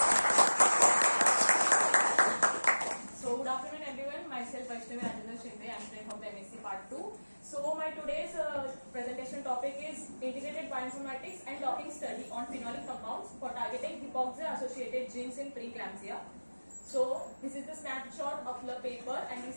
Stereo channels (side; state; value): both; inverted; correlation -1.00